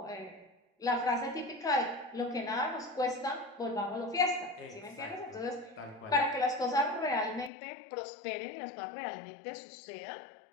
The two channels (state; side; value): drops out; right; at 7.5 s